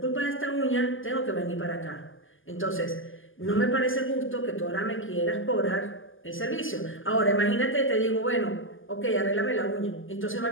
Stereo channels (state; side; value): late; right; 0.58 ms